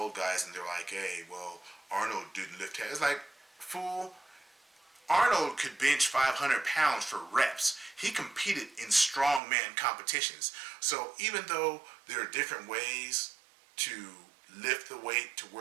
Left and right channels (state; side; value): drops out; left; at 9.4 s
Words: guys and they're like, hey, well, Arnold didn't lift heavy. It's like, fool, Arnold could bench 500 pounds for reps. He competed in strongman competitions. So even though there are different ways to lift the weight to